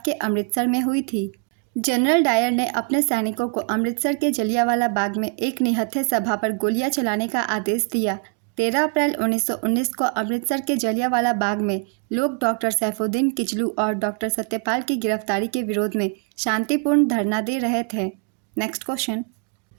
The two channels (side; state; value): left; quieter; 37.1 dB